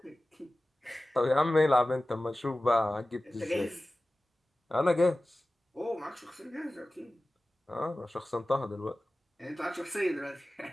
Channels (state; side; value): normal; both; correlation 0.96